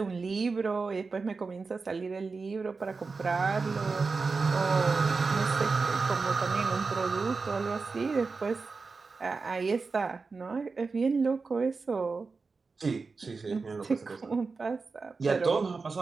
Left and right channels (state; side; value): quieter; left; 4.4 dB